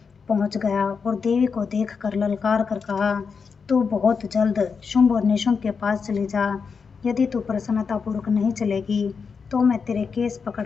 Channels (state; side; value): quieter; right; 5.6 dB